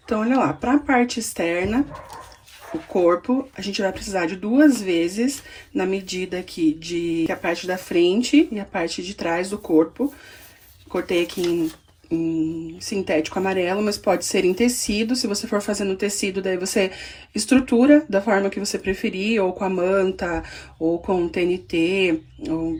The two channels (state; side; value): identical; both; correlation 1.00